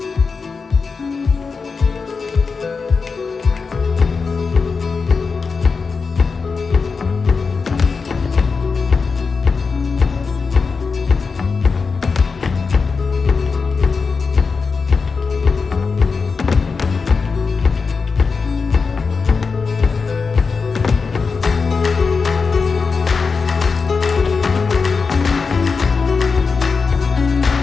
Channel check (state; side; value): quieter; right; 4.9 dB